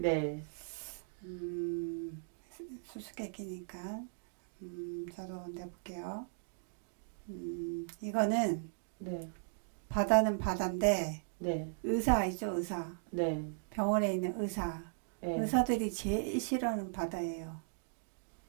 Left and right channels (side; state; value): left; silent; digital silence